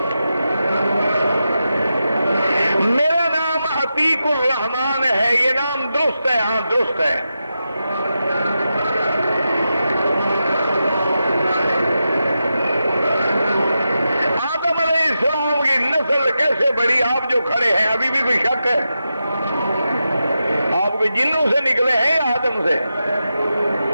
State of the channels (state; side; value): inverted; both; correlation -0.89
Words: میرا نام عتیق الرحمان ہے، یہ نام درست ہے؟ ہاں درست ہے. کیسے بڑی؟ آپ جو کھڑے ہیں ابھی بھی کوئی شک ہے؟ آپ کوئی جنوں سے نکلے ہیں یا آدم سے؟